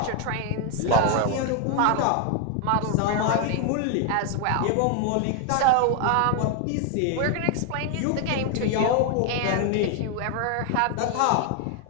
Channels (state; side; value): different; both; correlation 0.00